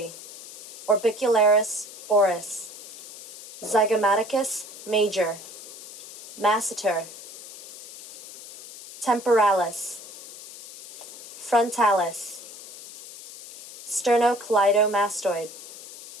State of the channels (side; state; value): left; noise; hiss, 14 dB below the sound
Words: Orbicularis oris, Zygomaticus Major, Masseter, Temporalis, Frontalis, Sternocleidomastoid,